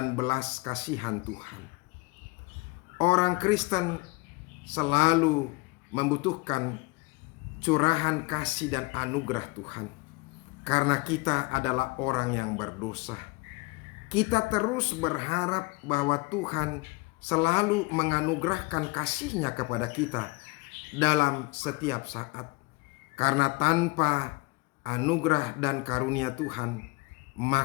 belas kasihan Tuhan. Orang Kristen selalu membutuhkan curahan kasih dan anugerah Tuhan, karena kita adalah orang yang berdosa. Kita terus berharap bahwa Tuhan selalu menganugerahkan kasih-Nya kepada kita dalam setiap saat. Karena tanpa anugerah dan karunia Tuhan,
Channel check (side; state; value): right; quieter; 25.0 dB